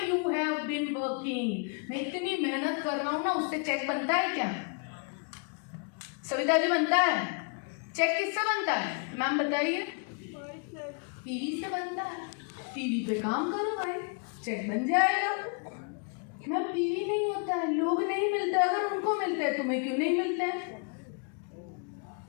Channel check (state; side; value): quieter; right; 38.5 dB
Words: you have been working. मैं इतनी मेहनत कर रहा हूँ ना, उससे चेक बनता है क्या? सविता जी बनता है? चेक किससे बनता है मैम बताइए? पीवी से बनता है। पीवी पे काम करो भाई, चेक बन जाएगा। मैम पीवी नहीं होता है, लोग नहीं मिलते। अगर उनको मिलते हैं तुम्हें क्यों नहीं मिलते हैं?